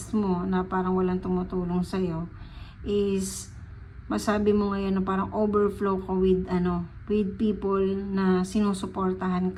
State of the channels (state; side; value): identical; both; correlation 1.00